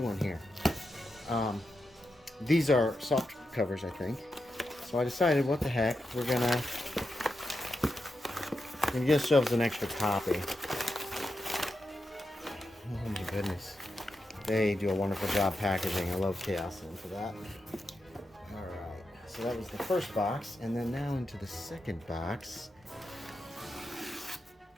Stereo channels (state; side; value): normal; both; correlation 0.87